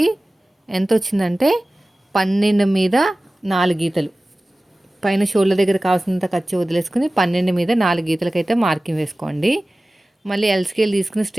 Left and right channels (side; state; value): both; normal; correlation 0.97